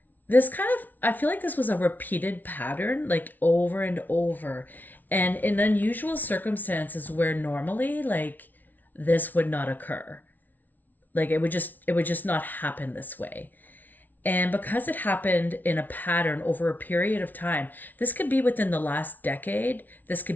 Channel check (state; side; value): late; right; 0.082 ms